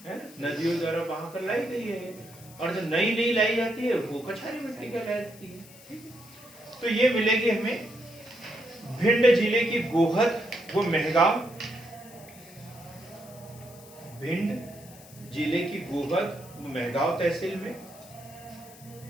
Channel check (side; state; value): left; noise; hiss, 21 dB below the sound